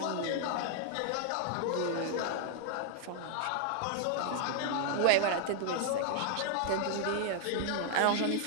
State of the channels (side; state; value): both; different; correlation 0.00